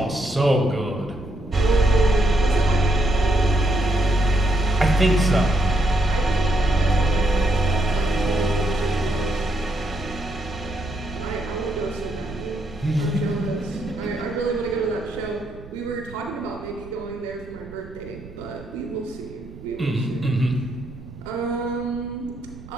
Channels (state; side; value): noise; right; rumble, 17 dB below the sound